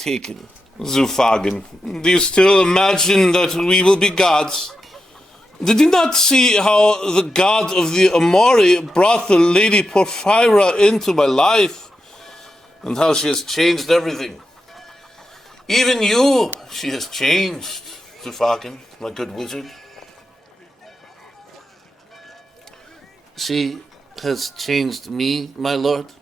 Zufagan, do you still imagine that we will be gods? Did you not see how the god of the Amori brought the Lady Porphyra into my life? And how she has changed everything. Even you, she has changed, Zufagan, my good wizard. She has changed me, my lord.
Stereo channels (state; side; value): normal; both; correlation 0.88